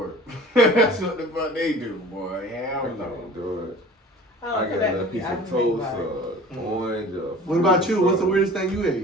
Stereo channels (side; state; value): both; normal; correlation 0.44